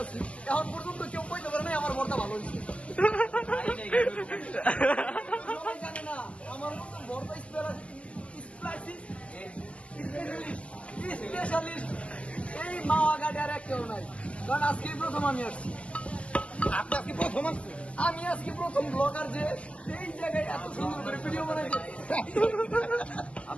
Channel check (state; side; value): late; right; 0.062 ms